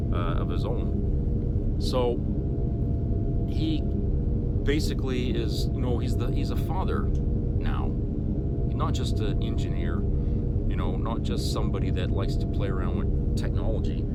of his own. So he basically is, you know, he's a father now. He's not just an engineer, you know, not just somebody that likes to play around with technology.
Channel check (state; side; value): identical; both; correlation 1.00